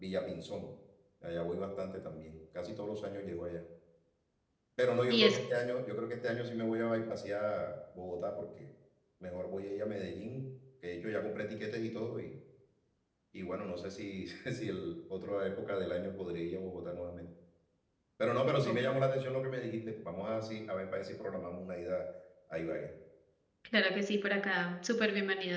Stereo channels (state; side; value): identical; both; correlation 1.00